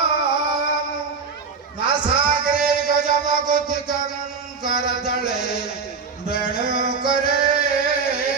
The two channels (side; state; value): left; quieter; 5.2 dB